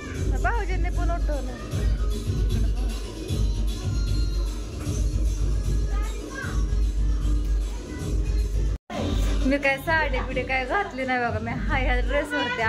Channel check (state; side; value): identical; both; correlation 1.00